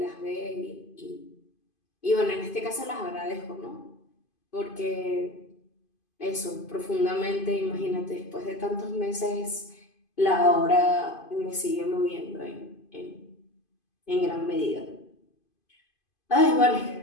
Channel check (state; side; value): late; right; 2.5 ms